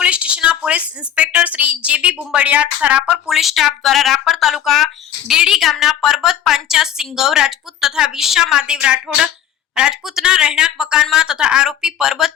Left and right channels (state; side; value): quieter; right; 10.2 dB